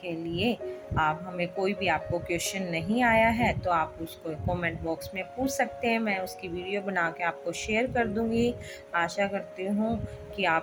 लिए आप हमें कोई भी आपको क्वेश्चन नहीं आया है तो आप उसको कमेंट बॉक्स में पूछ सकते हैं, मैं उसकी वीडियो बना के आपको शेयर कर दूंगी। आशा करती हूँ कि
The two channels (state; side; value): identical; both; correlation 1.00